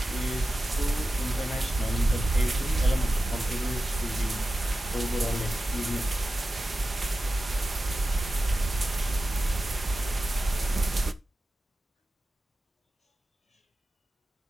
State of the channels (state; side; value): normal; both; correlation 0.94